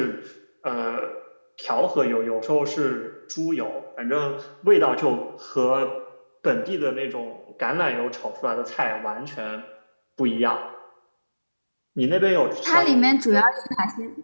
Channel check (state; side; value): inverted; both; correlation -1.00